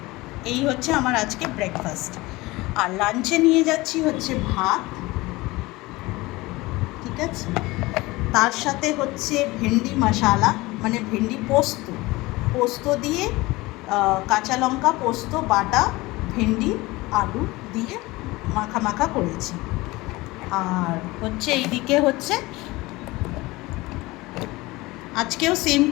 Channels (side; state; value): right; quieter; 21.0 dB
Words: এই হচ্ছে আমার আজকে ব্রেকফাস্ট। আর লাঞ্চে নিয়ে যাচ্ছি হচ্ছে ভাত, ঠিক আছে, তার সাথে হচ্ছে ভেন্ডি মশালা, মানে ভেন্ডি পোস্ত, পোস্ত দিয়ে কাঁচা লঙ্কা পোস্ত বাটা, ভেন্ডি আলু দিয়ে মাখা মাখা করেছি। আর হচ্ছে এইদিকে হচ্ছে আজকেও সেম